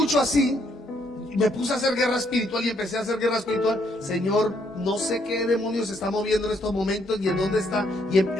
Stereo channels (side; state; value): both; normal; correlation 0.71